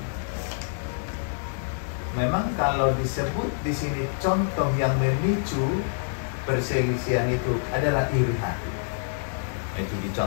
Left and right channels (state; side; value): silent; right; 60 dB below the other